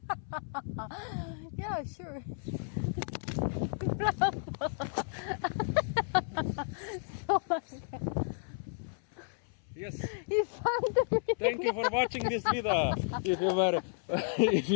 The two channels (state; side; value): silent; right; 56 dB below the other